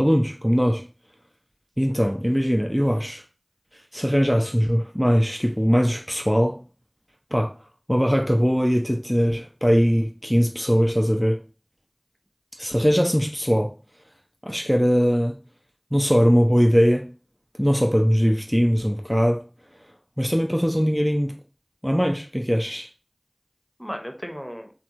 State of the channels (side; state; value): both; identical; correlation 1.00